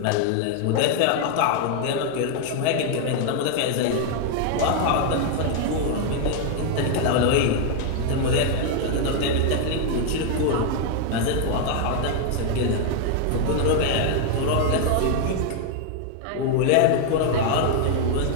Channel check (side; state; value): both; different; correlation 0.00